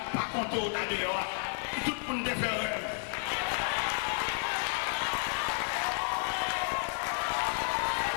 pas qu'on tourne dehors, tout le monde fait rêve.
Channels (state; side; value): silent; right; 57 dB below the other